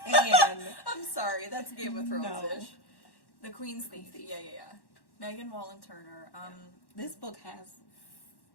Hand. I'm sorry, that's Game of Thrones-ish. The Queen's Thief. Yeah. Megan Wallen Turner. This book has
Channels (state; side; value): late; right; 1.1 ms